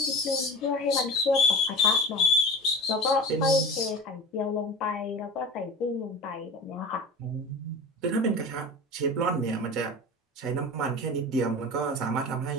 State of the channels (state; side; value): normal; both; correlation 0.34